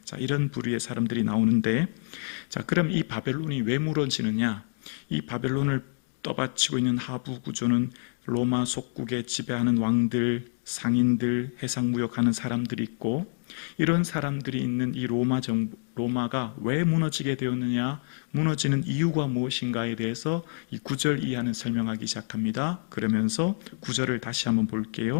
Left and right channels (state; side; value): silent; right; digital silence